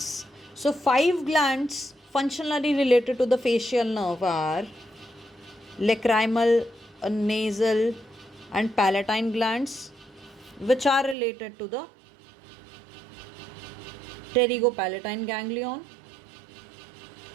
So 5 glands functionally related to the facial nerve are lacrimal, nasal and palatine glands, which are related to the pterygopalatine ganglion,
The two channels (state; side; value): drops out; left; at 11.2 s